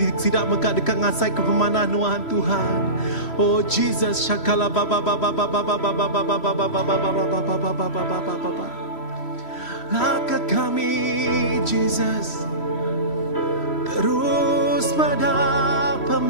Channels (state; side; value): late; right; 3.1 ms